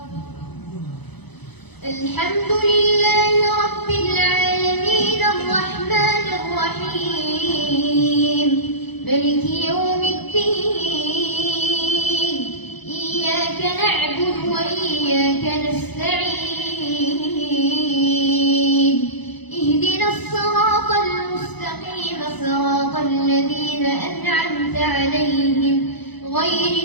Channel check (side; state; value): right; late; 0.99 ms